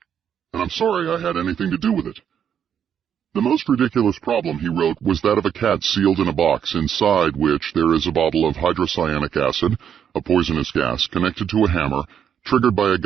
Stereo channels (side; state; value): left; quieter; 8.6 dB